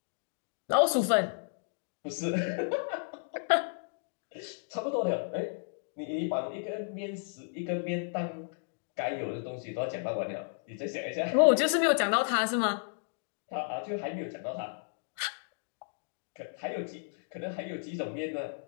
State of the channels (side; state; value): right; silent; digital silence